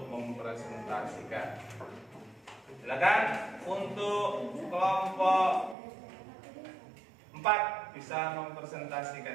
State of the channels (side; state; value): left; drops out; at 5.8 s